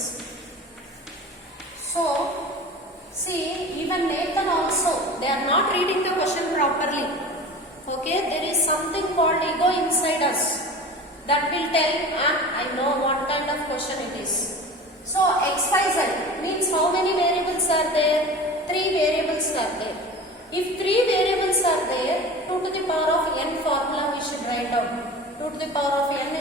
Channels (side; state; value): both; normal; correlation 0.36